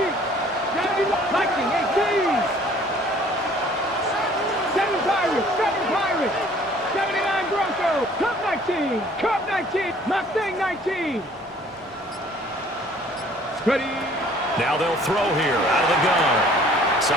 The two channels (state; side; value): normal; both; correlation 0.55